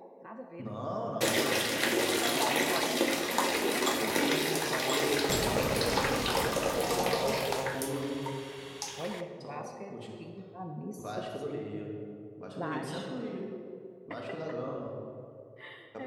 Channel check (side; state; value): both; identical; correlation 1.00